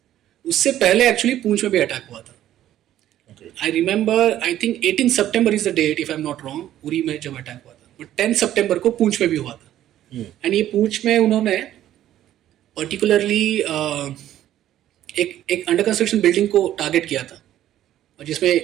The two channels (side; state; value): left; quieter; 12.4 dB